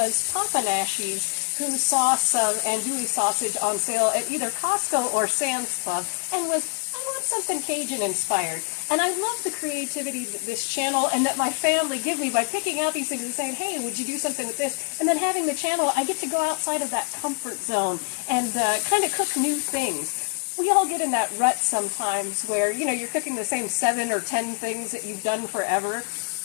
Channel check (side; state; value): right; quieter; 35.3 dB